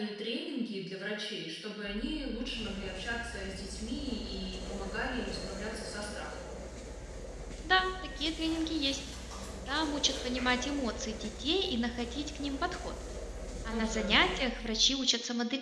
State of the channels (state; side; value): identical; both; correlation 1.00